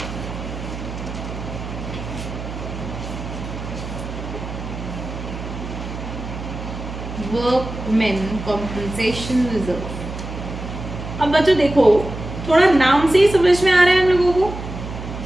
Workman compensation reserve. अब बच्चों देखो, थोड़ा नाम से ही समझ में आ रहा है हम लोगों को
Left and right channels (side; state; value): right; noise; hum, 9 dB below the sound